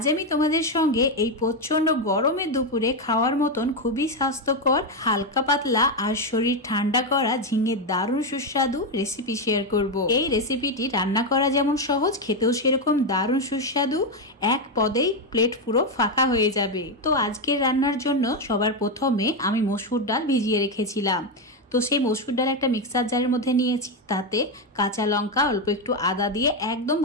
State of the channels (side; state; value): both; normal; correlation 0.07